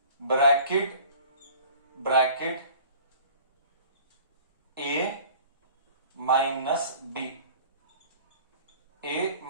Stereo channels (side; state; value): both; inverted; correlation -0.47